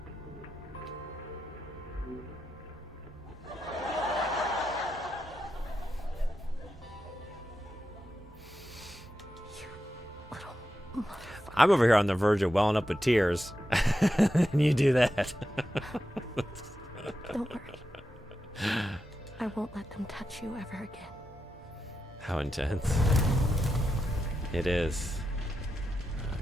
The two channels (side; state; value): both; normal; correlation 0.88